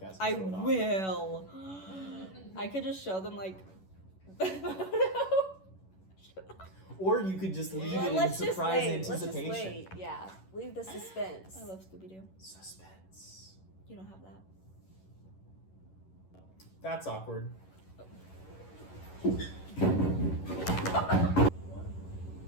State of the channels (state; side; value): late; right; 11 ms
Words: and I show it off. will. I could just show them like the photo. Or you could just leave it in Let's just surprise wait. Let's just anticipation. wait. Yeah, leave the suspense. I love Scooby-Doo. Suspense. You don't have that. That's awkward.